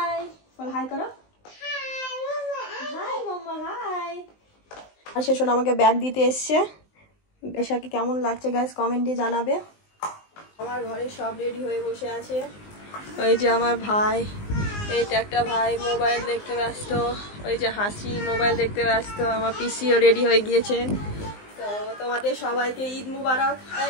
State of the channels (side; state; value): right; late; 19 ms